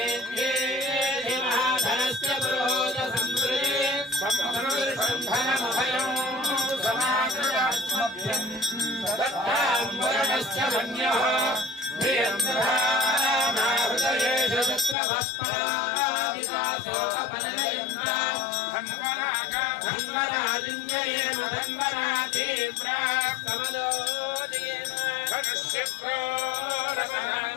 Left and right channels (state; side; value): drops out; right; at 15.0 s